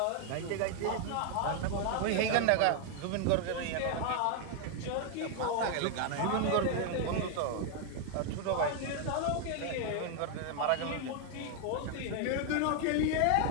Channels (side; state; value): both; different; correlation 0.00